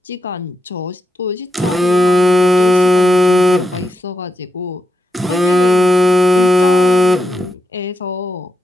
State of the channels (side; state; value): both; normal; correlation 0.86